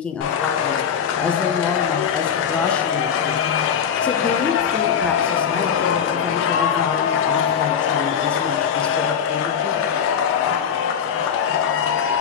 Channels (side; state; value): right; quieter; 7.7 dB